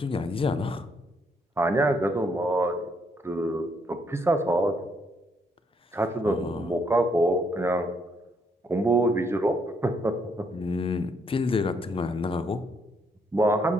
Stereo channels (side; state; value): both; normal; correlation 0.72